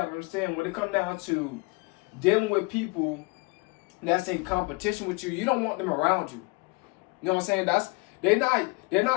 to understand, when it comes down to dealing with people that's in competition with you, you don't want them around you. You know what I'm saying? They're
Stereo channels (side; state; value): right; quieter; 27.2 dB